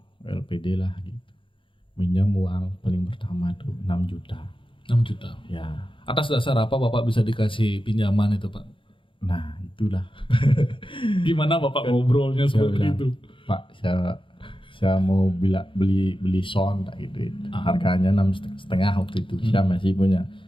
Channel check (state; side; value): late; right; 0.25 ms